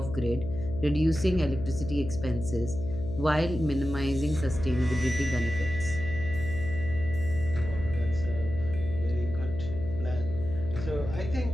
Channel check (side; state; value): left; noise; hum, 8 dB below the sound